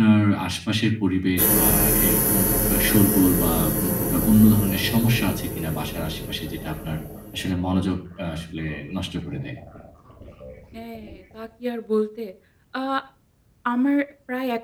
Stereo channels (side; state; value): both; identical; correlation 1.00